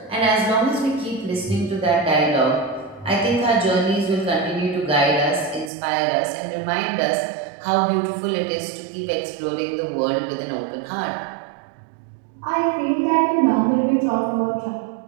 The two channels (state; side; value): drops out; left; at 5.7 s